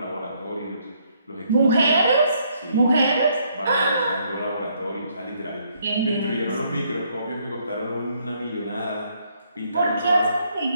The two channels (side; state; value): both; inverted; correlation -0.70